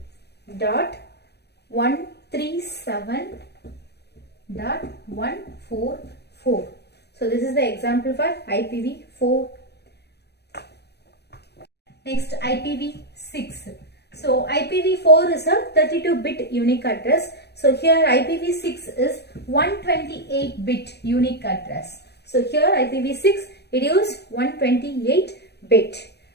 So this is the example for IPv4. Next, IPv6. So IPv4 is a 32-bit unique address. So here IPv6 is 128-bit unique address. So here IPv6, it is 128-bit.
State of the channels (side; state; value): right; late; 0.48 ms